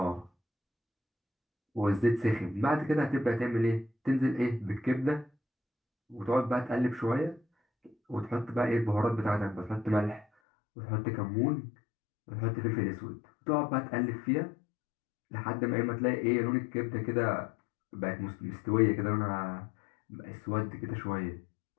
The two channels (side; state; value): right; drops out; at 10.2 s